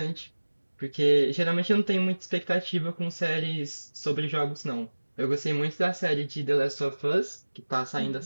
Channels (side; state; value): both; inverted; correlation -1.00